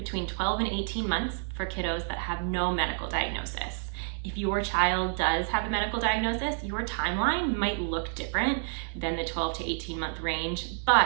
12 and 18 months for kiddos that have no medical diagnosis. If your child does have a medical diagnosis, your timeline might look different than the 12 to 18 month range,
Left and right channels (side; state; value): left; silent; digital silence